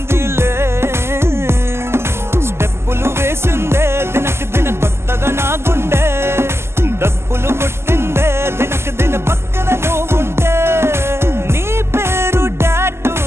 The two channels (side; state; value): left; late; 0.12 ms